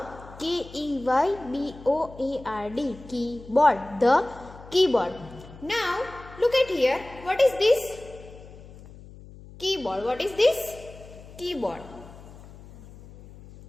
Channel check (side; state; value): left; noise; hum, 18 dB below the sound